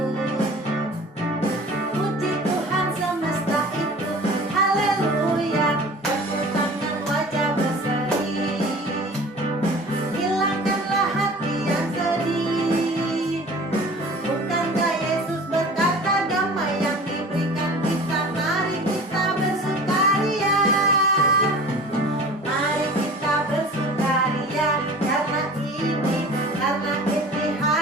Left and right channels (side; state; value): both; normal; correlation 0.42